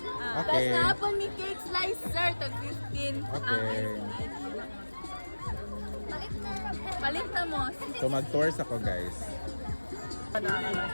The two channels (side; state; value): both; inverted; correlation -1.00